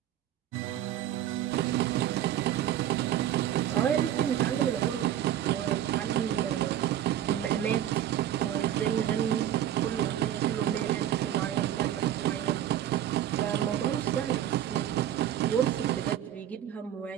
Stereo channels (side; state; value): left; quieter; 11.4 dB